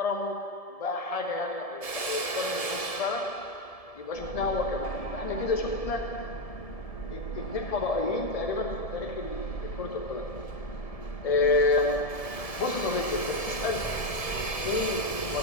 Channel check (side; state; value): right; late; 1.7 ms